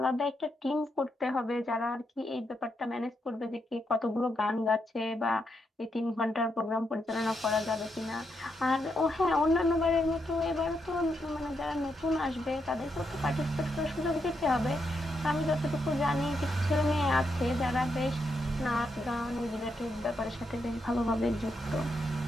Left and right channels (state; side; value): normal; both; correlation 0.81